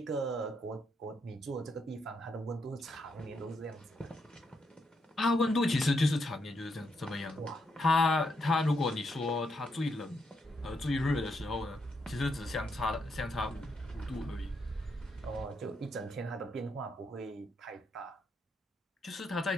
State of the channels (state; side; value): normal; both; correlation 0.79